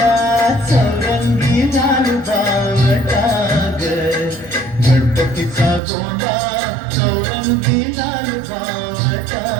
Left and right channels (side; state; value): left; drops out; at 5.8 s